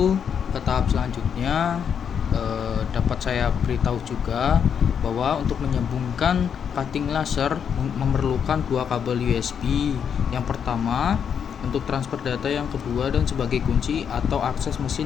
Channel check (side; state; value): right; quieter; 7.6 dB